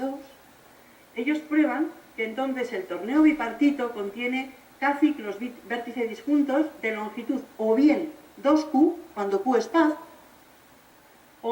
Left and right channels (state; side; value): identical; both; correlation 1.00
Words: ellos prueban que entonces el torneo bipartito contiene K ciclos vértice disjuntos de longitud o bien 2Q, cuando Q es par,